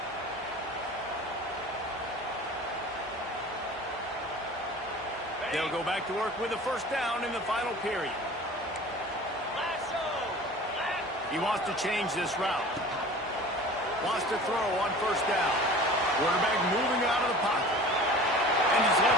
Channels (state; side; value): normal; both; correlation 0.41